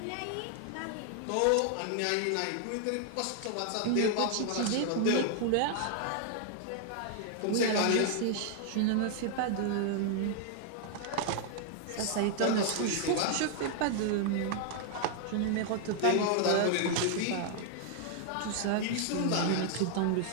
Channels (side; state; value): both; different; correlation 0.00